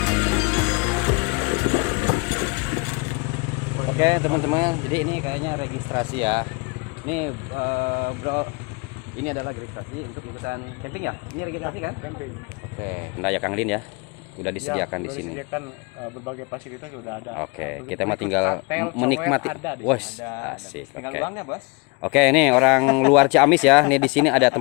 Oke teman-teman, jadi ini kayaknya registrasi ya. Ini bro, ini adalah registrasi untuk ikutan camping ya. Ini registrasi kan? Camping. Oke, ya Kang Lin ya. Udah disediakan di sini. Disediakan berbagai fasilitas sudah ada. Oke, kita mah tinggal menikmati. Wes, asik. Oke. Bos. Oke, ini orang luar Ciamis ya. Nih di sini ada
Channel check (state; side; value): quieter; right; 30.0 dB